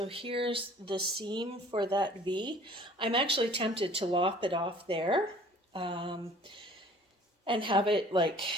here's the seam for that V. I'm actually tempted to lop it off there and have it like,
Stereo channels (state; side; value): normal; both; correlation 0.51